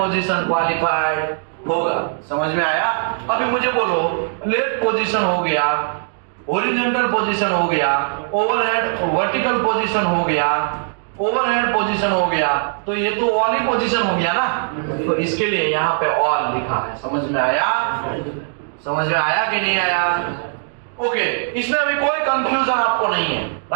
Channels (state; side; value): silent; left; digital silence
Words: qualified होगा। समझ में आया? अभी मुझे बोलो, फ्लैट पोजीशन हो गया, हॉरिजॉन्टल पोजीशन हो गया, ओवरहेड वर्टिकल पोजीशन हो गया, ओवरहेड पोजीशन हो गया, तो ये तो ऑल ही पोजीशन हो गया ना, तो इसके लिए यहाँ पे ऑल लिखा है। समझ में आया? समझ में आया कि नहीं आया? ओके, इसमें अभी कोई कंफ्यूजन आपको नहीं है,